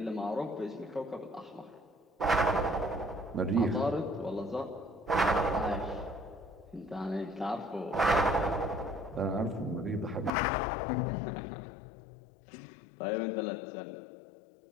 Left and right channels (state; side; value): drops out; right; at 10.3 s